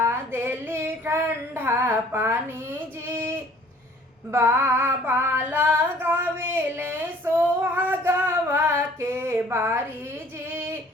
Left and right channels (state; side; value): normal; both; correlation 0.54